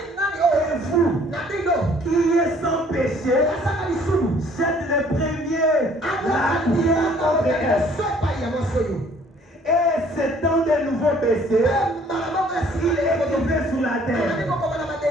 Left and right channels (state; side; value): normal; both; correlation 0.58